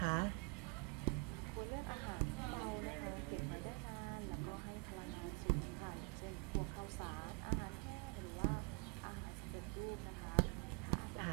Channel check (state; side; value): quieter; left; 32.7 dB